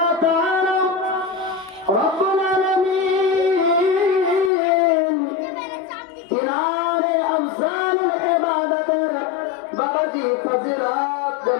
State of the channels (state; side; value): drops out; right; at 4.5 s